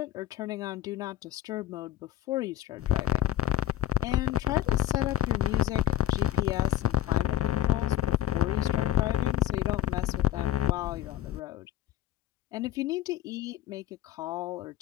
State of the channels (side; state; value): right; quieter; 13.0 dB